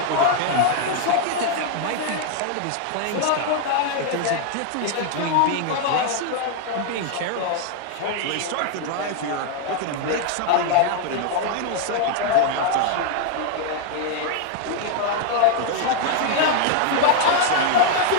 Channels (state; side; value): different; both; correlation 0.00